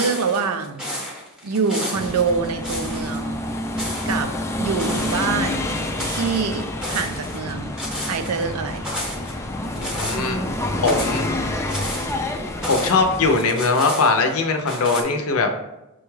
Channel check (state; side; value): normal; both; correlation 0.10